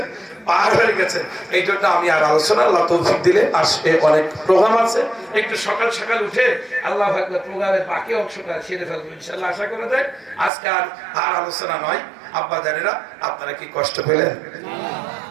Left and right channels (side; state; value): left; drops out; at 10.5 s